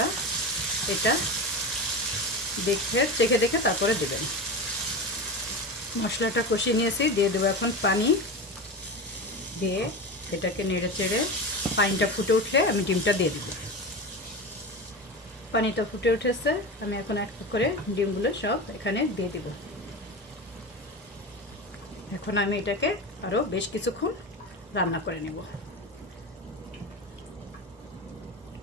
এটা চেখে দেখে তারপরে দেবেন। মশলাটা কষিয়ে নিয়েছি, দিয়ে দেবো এখন পানি। দিয়ে এটাকে নেড়ে চেড়ে পানিটা ফুটে উঠলে আমি ডিমটা দিয়ে দেবো। পানিটা ফুটে উঠেছে, আমি এখন এক করে ডিমগুলো সব এখানে দিয়ে দেব। এখন আমি এটাকে আরও বেশ কিছুক্ষণ রান্না করে নেব।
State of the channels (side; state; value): both; normal; correlation 0.25